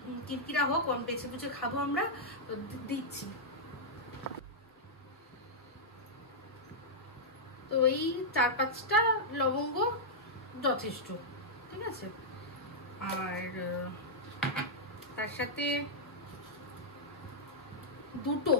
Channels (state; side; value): normal; both; correlation -0.09